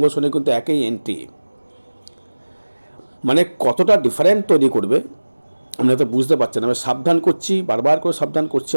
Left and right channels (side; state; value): both; inverted; correlation -1.00